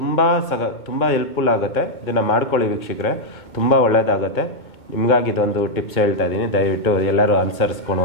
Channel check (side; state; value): right; late; 2.2 ms